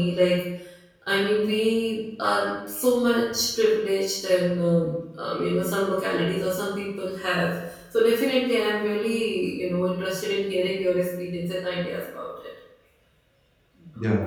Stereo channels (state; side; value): identical; both; correlation 1.00